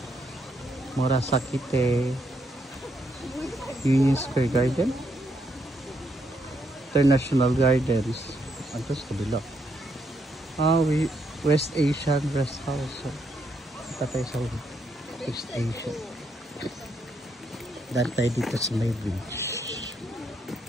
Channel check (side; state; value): both; normal; correlation 0.76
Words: Murasakite, Union Square Garden, International Gardens. Ito sa kabila. West Asian Rest House. So, tayo sa West Asia. Dahil tayo dito sa may bridge.